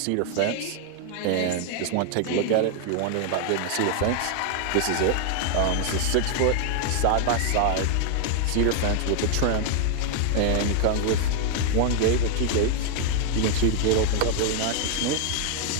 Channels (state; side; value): different; both; correlation 0.00